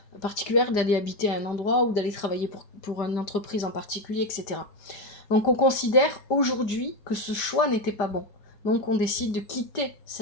particulière, d'aller habiter à un endroit ou d'aller travailler pour une entreprise en particulier, etc. Donc on considère aujourd'hui que ce choix n'était pas bon. Donc on décide de quitter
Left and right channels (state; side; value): late; right; 5.0 ms